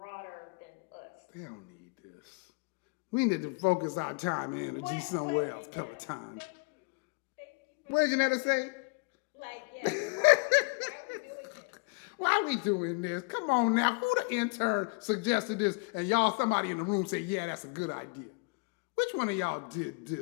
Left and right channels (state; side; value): quieter; right; 31.8 dB